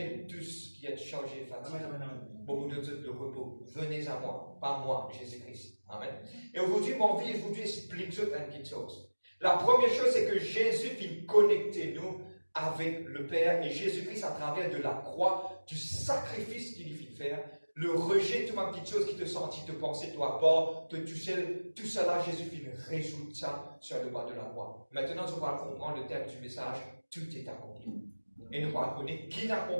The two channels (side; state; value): both; inverted; correlation -1.00